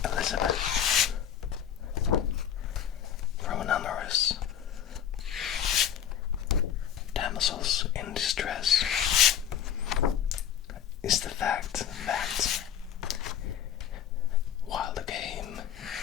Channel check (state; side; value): quieter; right; 9.4 dB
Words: Elizabeth from numerous damsels in distress is the fact that while the game